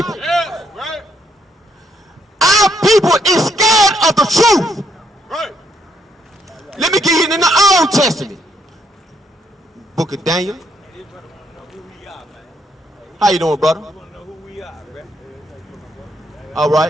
That's right. Our people is scared of the truth. Right. Let me get you in the Old Testament. Book of Daniel. How you doing, brother? All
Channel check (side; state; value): both; normal; correlation 0.72